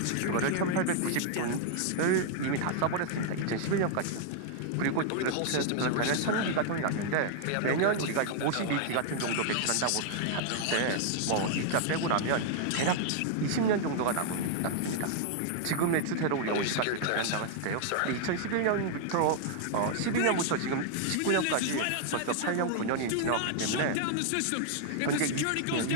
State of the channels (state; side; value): different; both; correlation -0.01